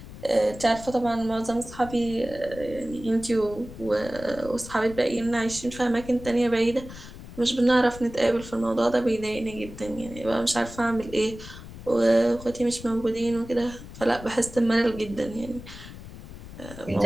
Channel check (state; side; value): noise; left; rumble, 14 dB below the sound